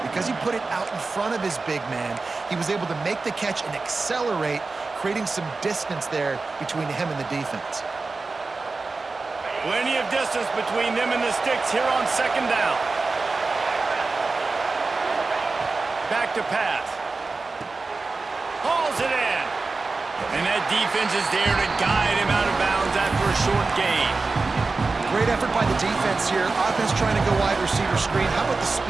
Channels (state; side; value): quieter; left; 3.9 dB